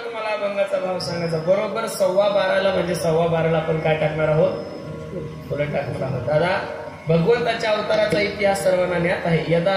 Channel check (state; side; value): identical; both; correlation 1.00